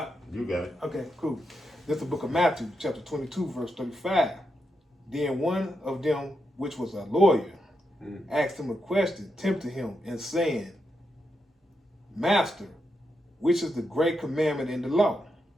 got it. Okay, cool. This is the book of Matthew, chapter 22, verse 35. Then one of them, which was a lawyer, asked him a question, tempting him, and saying, Master, which is the great commandment in the law?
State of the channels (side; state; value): both; normal; correlation 0.84